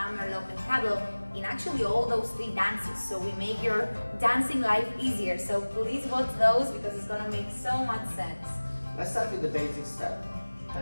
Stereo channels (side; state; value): both; inverted; correlation -1.00